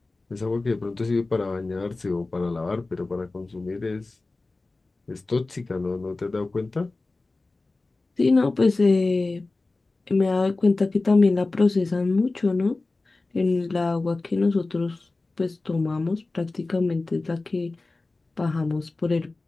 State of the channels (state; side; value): quieter; right; 3.3 dB